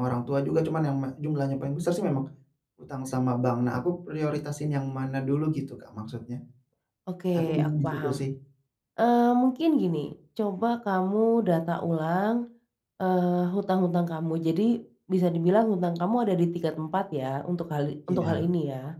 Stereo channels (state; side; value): identical; both; correlation 1.00